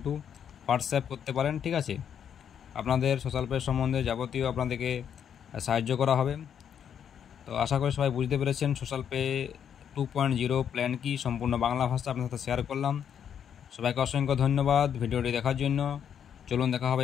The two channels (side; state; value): right; quieter; 8.5 dB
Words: হোয়াটসঅ্যাপ করতে পারেন। ঠিক আছে, আপনাদের সোশ্যাল পে সম্বন্ধে যাবতীয় আপনাদেরকে সাহায্য করা হবে। তো আশা করি সবাই বুঝতে পেরেছেন সোশ্যাল পে 2.0 প্ল্যান কি, সম্পূর্ণ বাংলা ভাষা আপনার সাথে শেয়ার করলাম। সবাইকে অসংখ্য ধন্যবাদ ভিডিওটি দেখার জন্য। চলুন দেখা